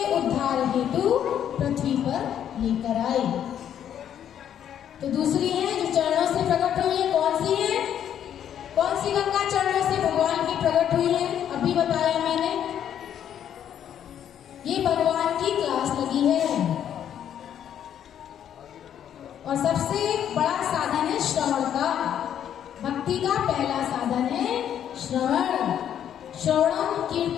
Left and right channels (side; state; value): right; quieter; 9.7 dB